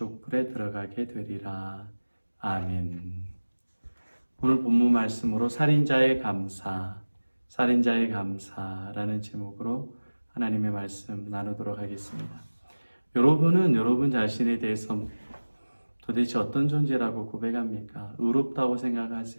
들어가게 되리라. 아멘. 오늘 본문 말씀으로 살인자의 감사라는 제목으로 하나님의 말씀 나누도록 하겠습니다. 여러분은 여러분 자신에 대해서 도대체 어떤 존재라고 고백합니까? 의롭다고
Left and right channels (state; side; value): inverted; both; correlation -1.00